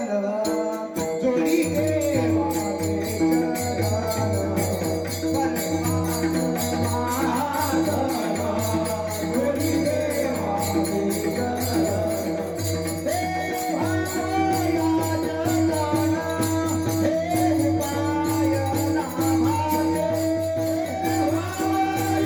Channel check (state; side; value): identical; both; correlation 1.00